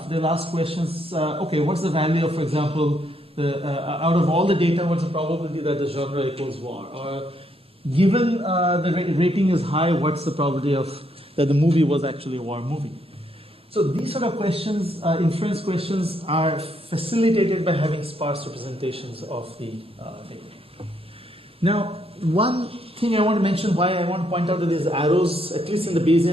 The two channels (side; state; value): both; normal; correlation 0.74